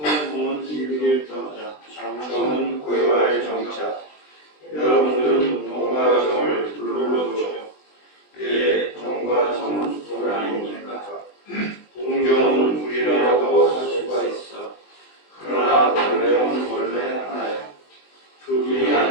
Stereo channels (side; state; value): right; late; 20 ms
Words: 일일 정자 장정은 고요할 정자 여러분들은 동과 정을 둘러보죠. 예, 동과 정은 둘 아닙니까? 동정은 둘이라도 할 수가 있어. 그러나 동정은 원래 하나야. 둘이